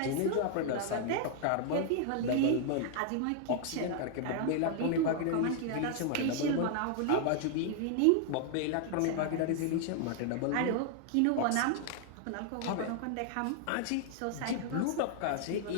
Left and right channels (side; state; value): both; different; correlation 0.00